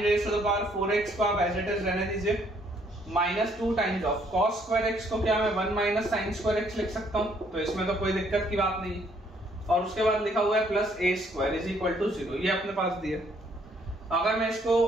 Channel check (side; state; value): both; normal; correlation 0.66